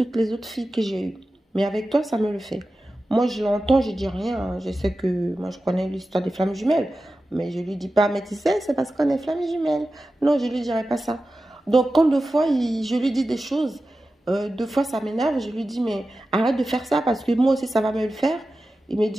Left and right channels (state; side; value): normal; both; correlation 0.93